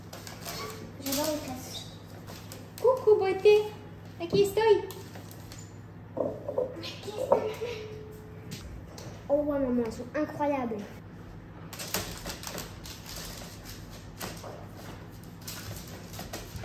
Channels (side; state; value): both; identical; correlation 1.00